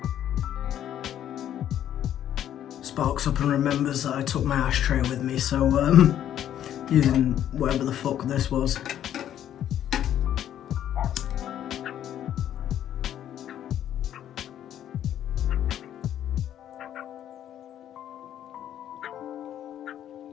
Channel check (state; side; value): quieter; right; 10.8 dB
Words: Sparks up and remembers that I took my ashtray with me, so using whatever the fuck this was.